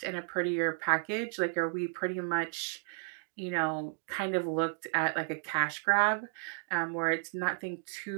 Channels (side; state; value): left; silent; 56 dB below the other